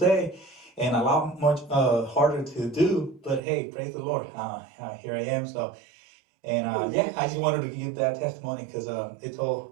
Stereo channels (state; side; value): drops out; left; at 3.4 s